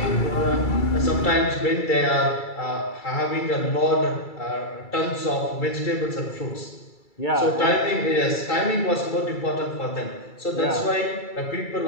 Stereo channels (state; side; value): late; right; 2.3 ms